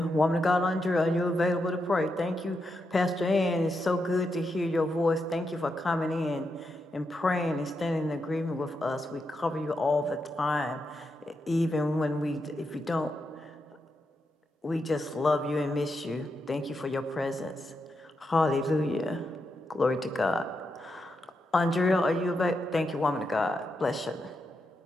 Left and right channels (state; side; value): normal; both; correlation 0.85